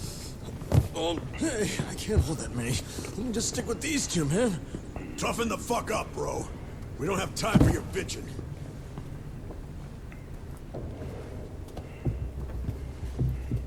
Hey, I can't hold that many. Let me just stick with these two, man. Toughen the fuck up, bro. We don't have time for your bitching.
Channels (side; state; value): both; identical; correlation 1.00